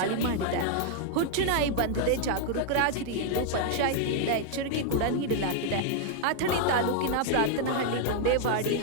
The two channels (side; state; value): both; different; correlation 0.00